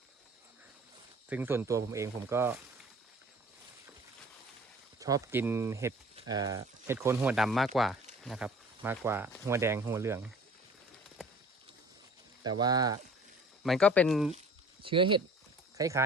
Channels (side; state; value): both; normal; correlation 0.47